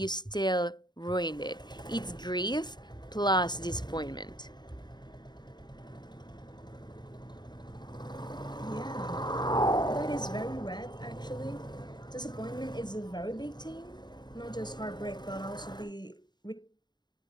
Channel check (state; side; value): late; right; 0.21 ms